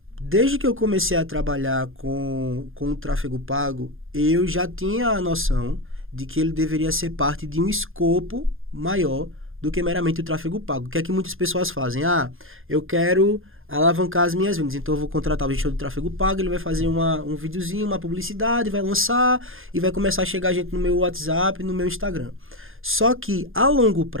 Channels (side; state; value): left; late; 0.60 ms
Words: Desde que eu comecei a trabalhar com o tráfego pago, eu já tinha a noção de que ele deveria ser parte de um escopo maior do que meramente o tráfego pago. O que é que muitas pessoas fazem? Eu quero alavancar as minhas vendas, então eu vou contratar o gestor do tráfego pago, ele vai fazer um videozinho, uma publicidade, vai lançar e vai começar a chegar gente no meu WhatsApp, no meu Instagram. Só que, a longo